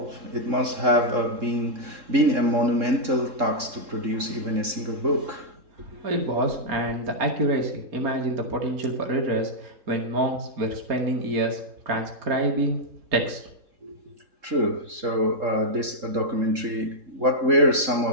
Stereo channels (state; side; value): late; left; 3.7 ms